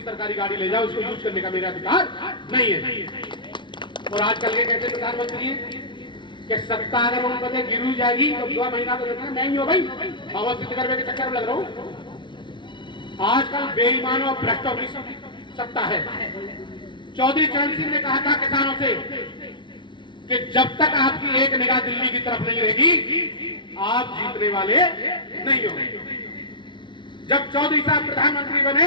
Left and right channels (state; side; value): late; right; 0.23 ms